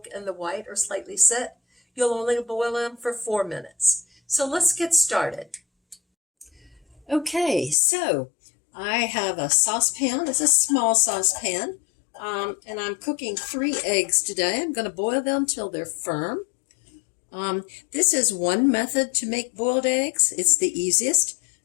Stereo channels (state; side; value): drops out; right; at 7.8 s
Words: and the white are slightly set, you'll only boil them for 4 minutes. So let's get started. Okay, so I have a saucepan. It's a small saucepan, and I'm cooking 3 eggs today. I'm going to boil them till they're firm. This is one method to make boiled eggs. It's the easiest.